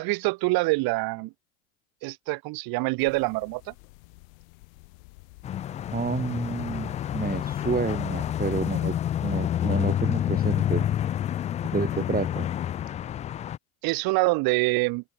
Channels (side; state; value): both; normal; correlation 0.27